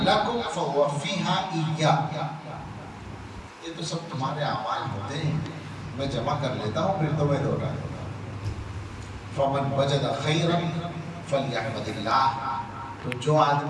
لکم فوفیھا ایایا، یہ تو سب تمہارے اعمال ہوتے ہیں، میں جمع کر لیتا ہوں پھر تمہیں دوہرا دوں گا۔ فمن وجد خیرا فلیحمد اللہ، تو جو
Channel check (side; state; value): both; identical; correlation 1.00